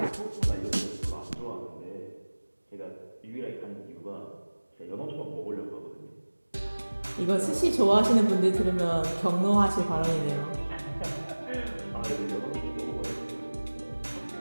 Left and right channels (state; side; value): inverted; both; correlation -1.00